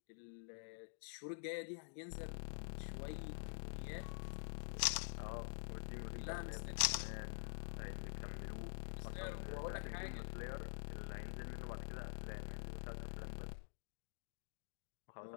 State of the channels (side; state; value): right; silent; digital silence